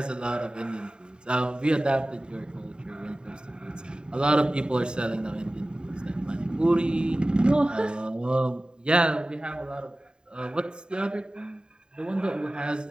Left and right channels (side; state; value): left; late; 0.048 ms